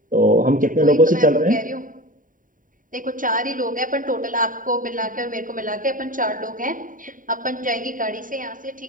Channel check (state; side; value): late; left; 0.39 ms